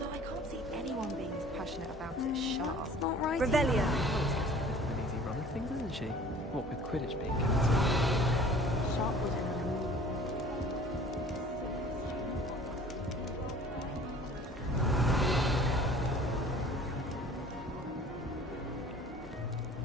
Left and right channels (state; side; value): normal; both; correlation 0.48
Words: I can't see anyone being as passionate about it as Sharp. That's not right. An Revelio. easy run of things, isn't she? What with Quidditch being cancelled. Sharp was